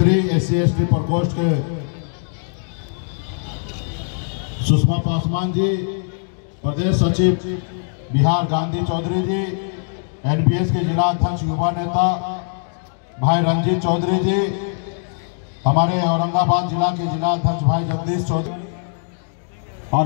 SC/ST प्रकोष्ठ के सुषमा पासवान जी, प्रदेश सचिव बिहार गांधी चौधरी जी, NPS के जिला अध्यक्ष युवा नेता भाई रंजीत चौधरी जी, हमारे औरंगाबाद जिला के जिला अध्यक्ष भाई जगदीश चौधरी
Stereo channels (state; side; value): silent; right; digital silence